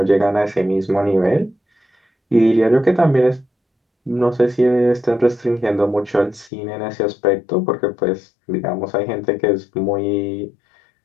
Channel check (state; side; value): drops out; right; at 6.5 s